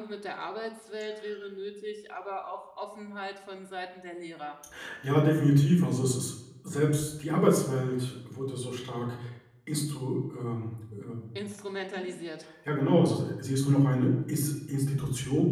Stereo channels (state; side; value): identical; both; correlation 1.00